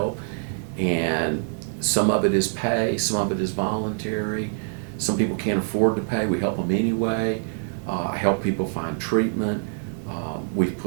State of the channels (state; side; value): silent; left; 62 dB below the other